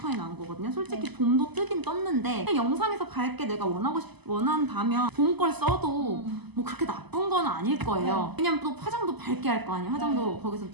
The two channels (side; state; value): left; late; 0.99 ms